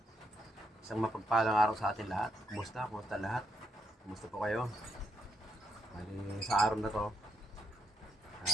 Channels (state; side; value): normal; both; correlation 0.79